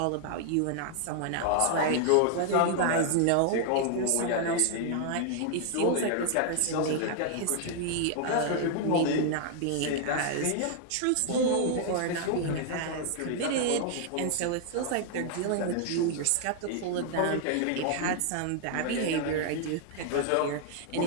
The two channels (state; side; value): different; both; correlation 0.00